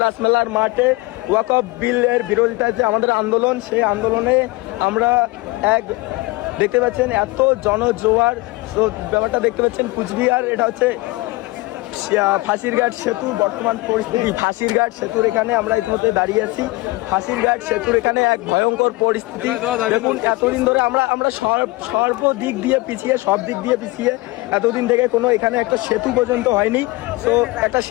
রাসমেলার মাঠে ওয়াকফ বিলের বিরোধিতায় যে আমাদের আন্দোলন, সেই আন্দোলনে আমরা দেখতে পাচ্ছেন এত জনজোয়ার। ব্যাপারটা দেখতে পাচ্ছেন কুচবিহার, এটা হচ্ছে ফাঁসিরঘাট সেতু বর্তমান পরিস্থিতি। ফাঁসিরঘাট সেতুর এখানে আমরা ইতিমধ্যে দাঁড়িয়ে আছি। ফাঁসিরঘাট সেতুর এখানে এক ভয়ঙ্কর পরিস্থিতি। দেখুন এতদিন ধরে আমরা সর্বদিক দিয়ে পিছিয়ে, সব দিক দিয়ে পিছিয়ে, এতদিন থেকে কোনো এখানে একটা সেতু পর্যন্ত হয়নি। তো একটা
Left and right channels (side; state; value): right; quieter; 21.8 dB